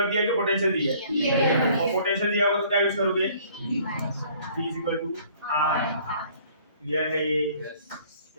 दिया है कि पोटेंशियल दिया है? और पोटेंशियल दिया होगा तो क्या यूज करोगे? V is equal to R। Clear है ये?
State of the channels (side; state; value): both; inverted; correlation -0.56